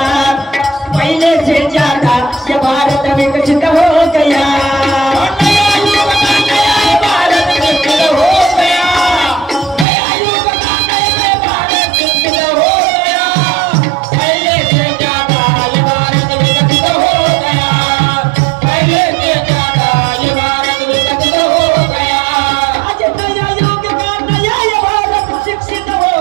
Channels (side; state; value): left; drops out; at 9.9 s